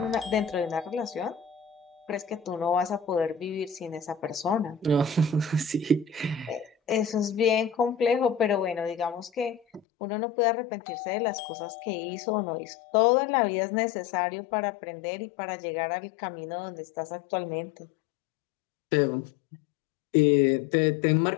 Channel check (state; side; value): drops out; right; at 9.8 s